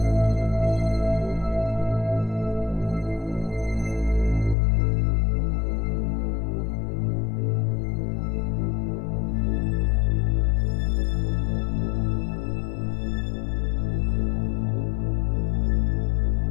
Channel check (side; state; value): right; drops out; at 4.5 s